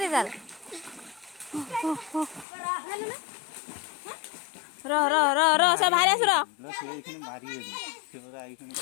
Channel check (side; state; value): right; drops out; at 2.5 s